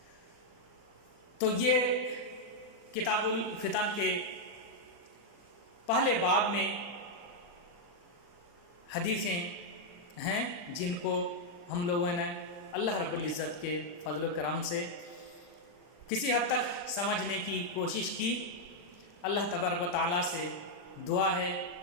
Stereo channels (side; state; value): right; late; 40 ms